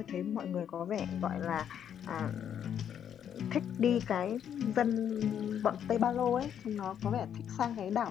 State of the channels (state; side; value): quieter; right; 9.1 dB